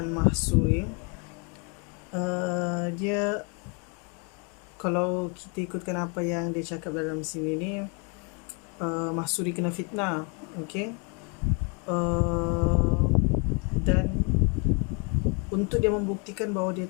Mahsuri. Dia, kalau kita ikutkan apa yang dia cakap dalam sini ni, Mahsuri kena fitnah, okey. Dan untuk dia membuktikan bahawa dia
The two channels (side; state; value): right; quieter; 33.2 dB